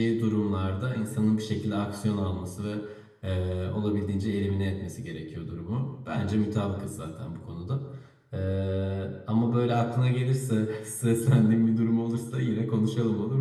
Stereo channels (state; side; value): identical; both; correlation 1.00